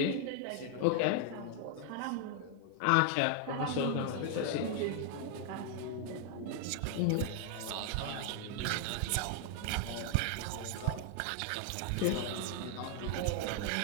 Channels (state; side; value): different; both; correlation 0.00